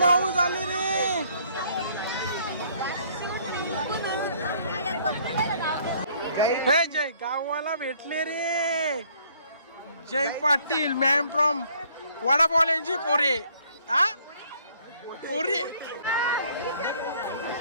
आले रे हे जय गावाला भेटले रे जय पाटील मॅम फ्रॉम वडापावल्यांची पोरे हा पोरे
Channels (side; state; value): both; inverted; correlation -0.61